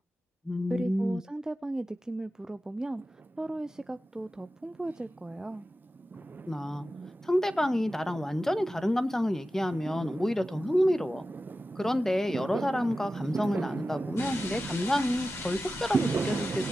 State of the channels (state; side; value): normal; both; correlation 0.94